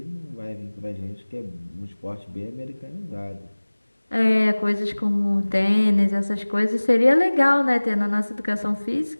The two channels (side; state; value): both; inverted; correlation -1.00